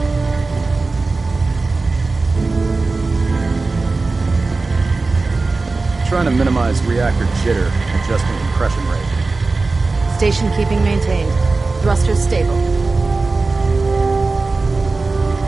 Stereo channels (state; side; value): quieter; left; 3.7 dB